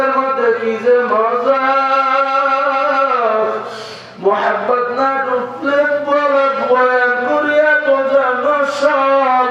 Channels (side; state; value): both; identical; correlation 1.00